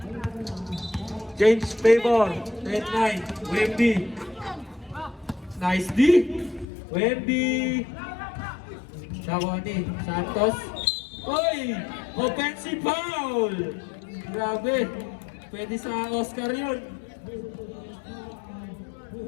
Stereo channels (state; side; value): drops out; right; at 6.7 s